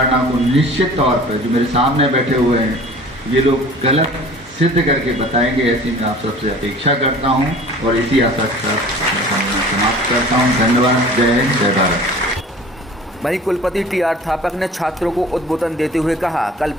को निश्चित तौर पर जो मेरे सामने बैठे हुए हैं ये लोग गलत सिद्ध करके बताएंगे, ऐसी मैं आप सबसे अपेक्षा करता हूं और इसी आशा के साथ समाप्त करता हूं। धन्यवाद। जय हिंद, जय भारत। वहीं कुलपति TR थापक ने छात्रों को उद्बोधन देते हुए कहा,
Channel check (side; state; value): both; normal; correlation 0.45